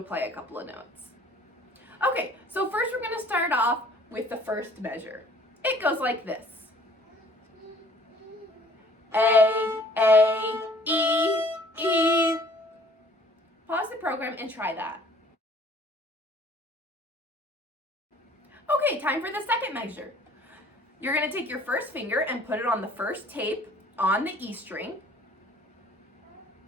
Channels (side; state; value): both; normal; correlation 0.55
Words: a couple of notes. Okay, so first we're going to start off with the first measure. It goes like this. A, E, E. Pause the program and try that. Okay, time for the second measure. You're going to take your first finger and put it on the first tape on the E string.